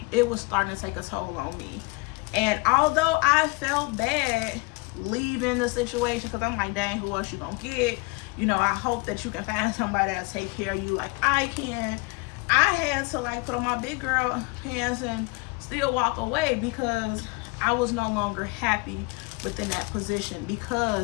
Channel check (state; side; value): quieter; right; 28.1 dB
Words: it was starting to take a toll on me. And although I felt bad leaving the situation, because I'm like, dang, who else you gonna get? You know, I hope that you can find somebody that'll take care of you like I can. I had to like put on my big girl pants and still walk away, because I was no longer happy within that position,